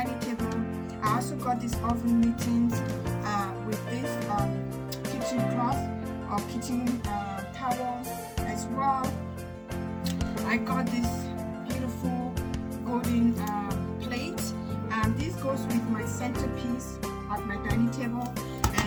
table. I also got this oven mittens with this kitchen cloth or kitchen towels as well. I got this beautiful golden plate. This goes with my centerpiece at my dining table,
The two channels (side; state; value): both; identical; correlation 1.00